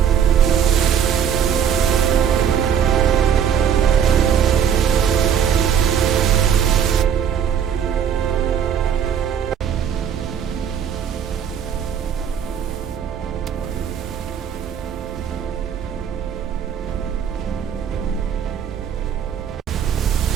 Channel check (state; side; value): quieter; left; 8.2 dB